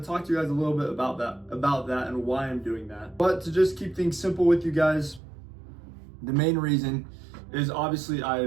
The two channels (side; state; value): left; drops out; at 5.2 s